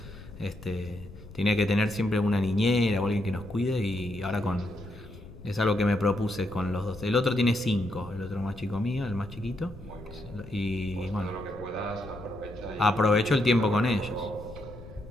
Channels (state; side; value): noise; left; rumble, 16 dB below the sound